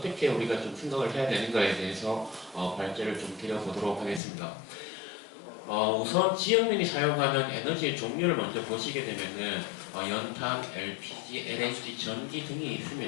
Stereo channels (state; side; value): drops out; right; at 4.2 s